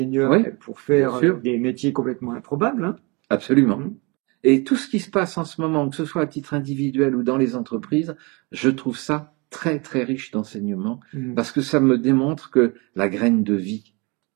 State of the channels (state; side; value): quieter; left; 28.7 dB